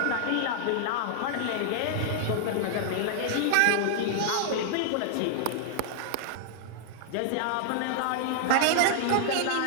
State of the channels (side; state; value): both; different; correlation -0.01